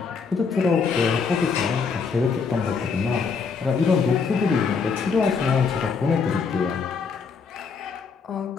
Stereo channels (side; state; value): right; quieter; 5.4 dB